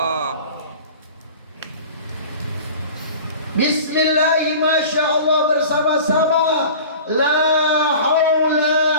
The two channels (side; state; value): both; inverted; correlation -0.40